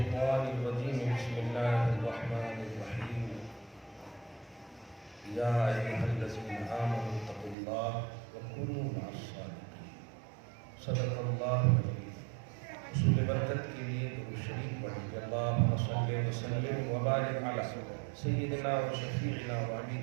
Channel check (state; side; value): drops out; left; at 7.6 s